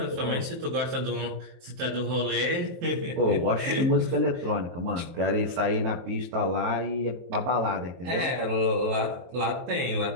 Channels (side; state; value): left; late; 23 ms